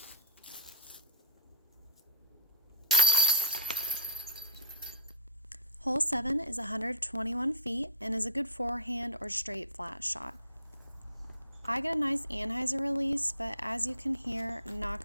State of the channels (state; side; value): inverted; both; correlation -0.38